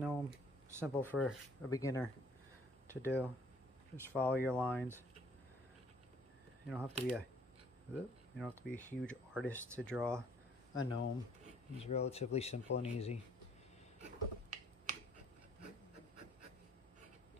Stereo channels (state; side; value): normal; both; correlation 0.60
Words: simple for a beginner to do. Just follow your lines. You don't have to be a huge artist to draw a gnome. It's relatively simple and easy.